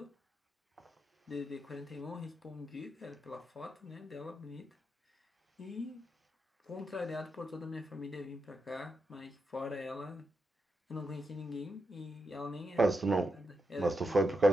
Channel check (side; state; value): both; normal; correlation 0.85